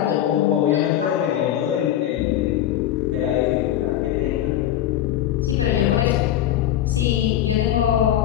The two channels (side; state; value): right; quieter; 11.8 dB